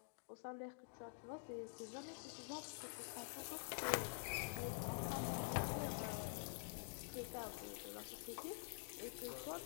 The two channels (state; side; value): silent; right; digital silence